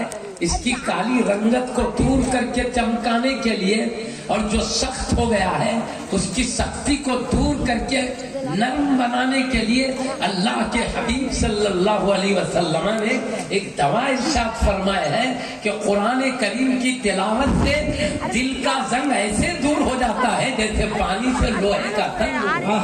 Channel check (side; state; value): both; identical; correlation 1.00